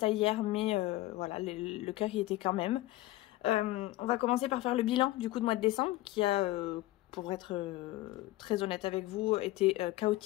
hier mais voilà, le cœur y était quand même. On va commencer par faire le bilan du coup de mois de décembre qui a, pour être très honnête avec vous, été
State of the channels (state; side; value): quieter; right; 17.5 dB